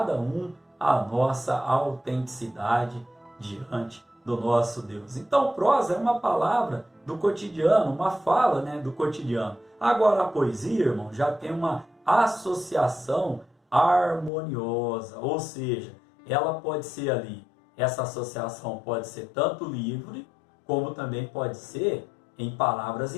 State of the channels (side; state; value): right; drops out; at 14.3 s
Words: um a nossa autenticidade diante do nosso Deus. Então, prosa é uma palavra do cotidiano, uma fala, né, do cotidiano. Agora, a poesia, irmão, já tem uma associação harmoniosa, ou seja, ela pode ser ali, essa associação pode ser tanto livre, como também pode ser em palavras